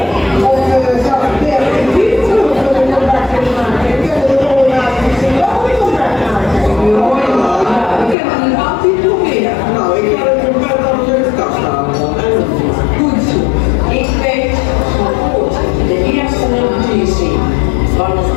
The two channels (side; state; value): right; drops out; at 8.2 s